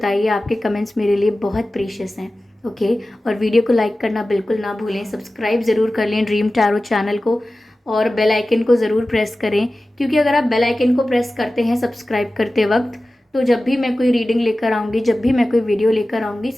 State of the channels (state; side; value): normal; both; correlation 0.96